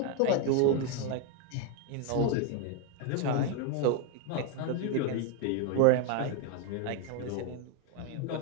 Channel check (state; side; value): different; both; correlation 0.01